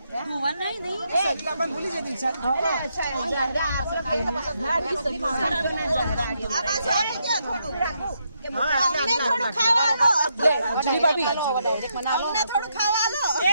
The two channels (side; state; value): both; inverted; correlation -0.79